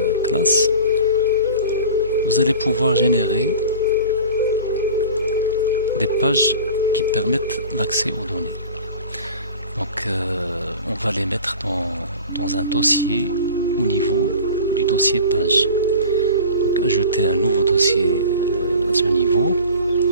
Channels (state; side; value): inverted; both; correlation -0.38